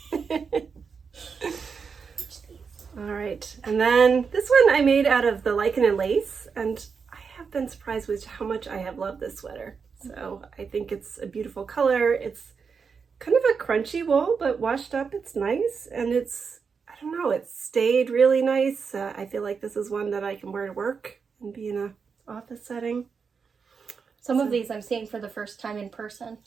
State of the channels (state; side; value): quieter; left; 5.7 dB